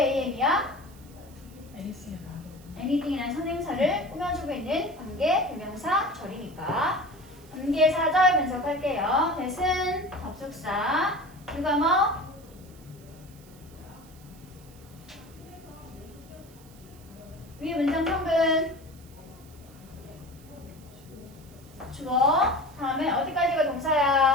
anything이라는 선행사를 꾸며주고 있는 관계 대명사 절이니까. 관계 사절 분석할게요. that은 접속사. 누가 뭐? 위에 문장 성분. 주어. 다음에 어디까지가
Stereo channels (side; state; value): right; noise; hiss, 25 dB below the sound